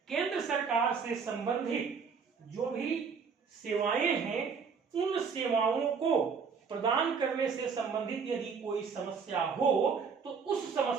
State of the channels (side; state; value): left; quieter; 5.8 dB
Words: केंद्र सरकार से संबंधित जो भी सेवाएं हैं, उन सेवाओं को प्रदान करने से संबंधित यदि कोई समस्या हो तो उस